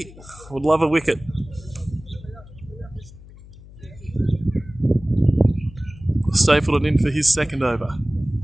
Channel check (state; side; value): noise; left; hum, 19 dB below the sound